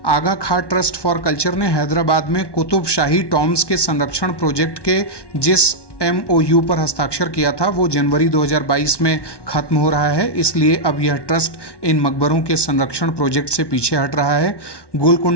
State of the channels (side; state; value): right; late; 1.1 ms